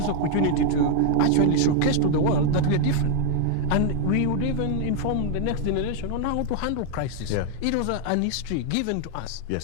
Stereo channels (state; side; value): different; both; correlation 0.00